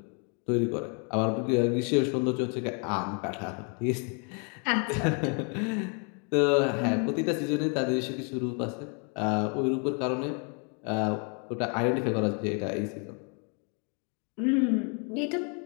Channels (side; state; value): right; quieter; 37.8 dB